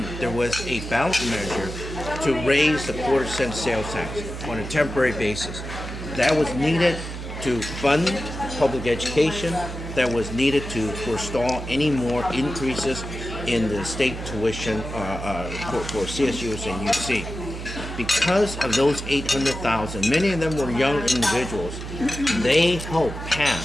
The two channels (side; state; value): right; noise; hum, 8 dB below the sound